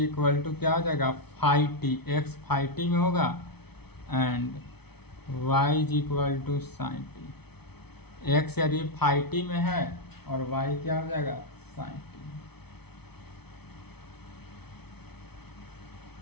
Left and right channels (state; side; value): late; right; 0.98 ms